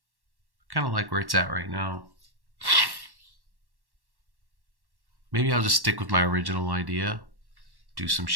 Kind of like where it's at right now. Maybe I'll just stick with my original idea. Do some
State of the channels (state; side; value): late; left; 1.1 ms